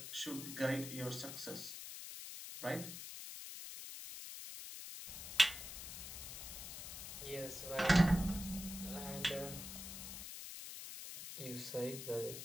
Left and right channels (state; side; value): noise; left; hiss, 8 dB below the sound